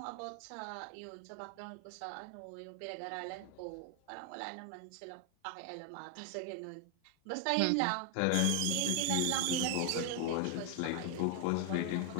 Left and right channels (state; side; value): different; both; correlation 0.00